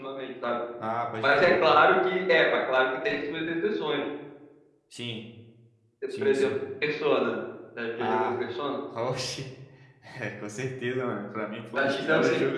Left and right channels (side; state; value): both; identical; correlation 1.00